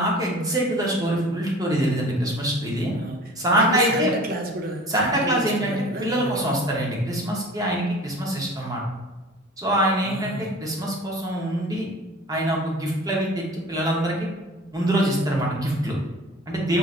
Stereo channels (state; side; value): normal; both; correlation 0.43